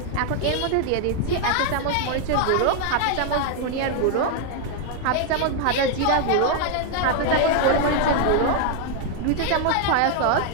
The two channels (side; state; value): both; different; correlation 0.00